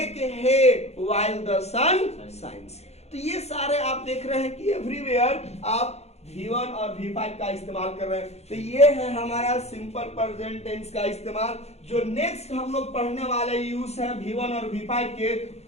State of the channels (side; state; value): right; late; 0.31 ms